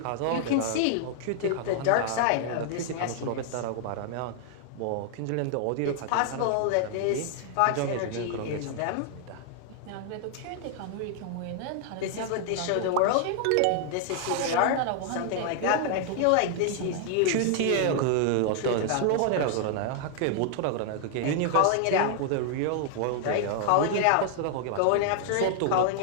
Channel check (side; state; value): both; different; correlation 0.00